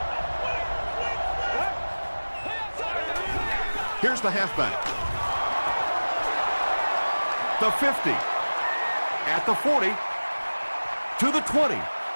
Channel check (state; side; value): inverted; both; correlation -1.00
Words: Here's the halfback. The 50. At the 40. To the 20.